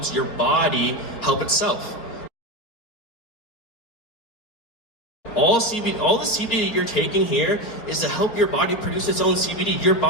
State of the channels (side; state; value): right; late; 4.3 ms